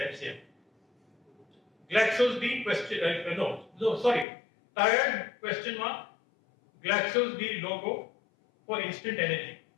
Glaxo's the question. Tired question mark. Glaxo's the logo for instant energy.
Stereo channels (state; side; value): drops out; right; at 4.2 s